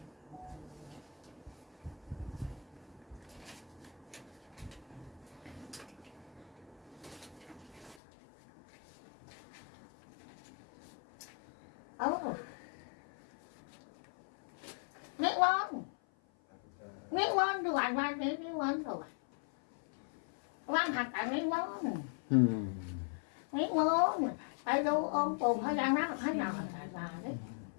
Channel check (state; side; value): drops out; right; at 8.0 s